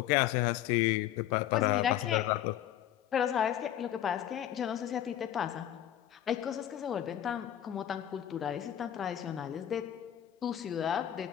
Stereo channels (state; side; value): quieter; right; 11.4 dB